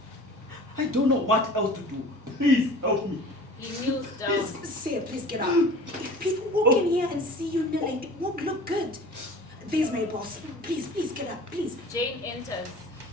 I don't know what else to do. Please help me. He kneels down. Say, please get up. If people walk in here and see you kneeling, it won't look good. There's my boss. Please get up, please. Jane enters.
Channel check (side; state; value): both; normal; correlation 0.42